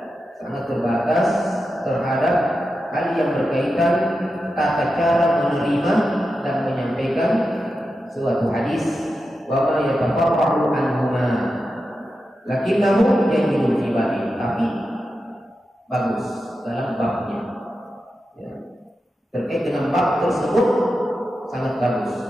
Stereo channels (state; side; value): normal; both; correlation 0.90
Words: sangat terbatas terhadap hal yang berkaitan tata cara menerima dan menyampaikan suatu hadis, wa ma yatafarra'u anhuma lakinnahu jayyidun fi babi, tapi bagus dalam babnya. Ya. Terkait dengan bab tersebut sangat bagus,